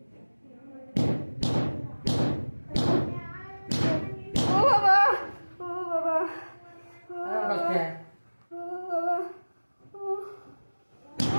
ও বাবা ও বাবা ও বাবা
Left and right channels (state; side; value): inverted; both; correlation -1.00